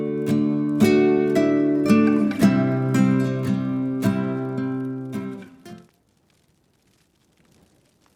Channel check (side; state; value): both; identical; correlation 1.00